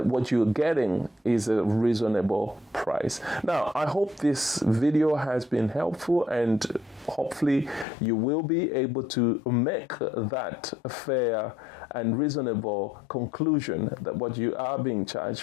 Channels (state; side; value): drops out; right; at 7.9 s